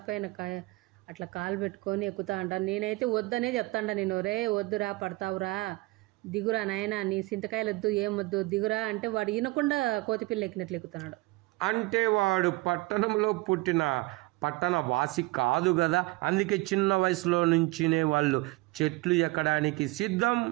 అట్లా కాలు పెట్టుకొని ఎక్కుతా అంటాను. నేనైతే వద్దనే చెప్తాండ, నేను రే వద్దురా పడతావురా, దిగురా నాయన, నీ చింతకాయలు వద్దు, ఏం వద్దు, దిగురా అంటే వాడు వినకుండా కోతిపిల్ల ఎక్కినట్లు ఎక్కుతున్నాడు. అంటే వాడు పట్టణంలో పుట్టిన పట్టణ వాసి కాదు కదా. అందుకే చిన్న వయసులో నుంచినే వాళ్ళు చెట్లు ఎక్కడానికి సిద్ధం,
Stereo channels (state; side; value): quieter; left; 22.3 dB